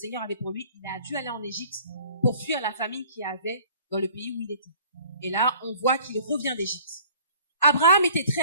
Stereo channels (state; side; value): inverted; both; correlation -0.52